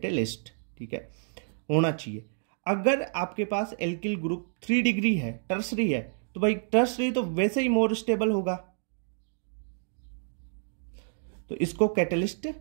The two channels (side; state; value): left; silent; digital silence